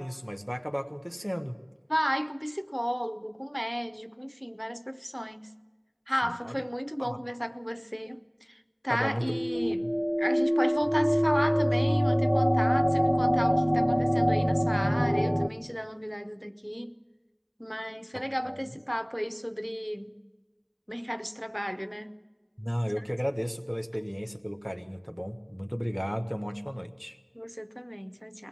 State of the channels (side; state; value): both; identical; correlation 1.00